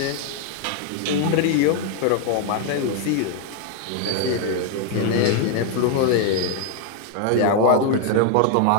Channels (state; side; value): different; both; correlation 0.00